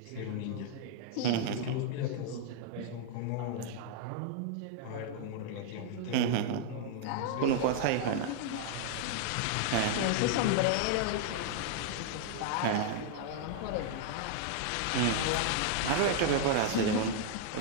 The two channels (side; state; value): both; different; correlation -0.01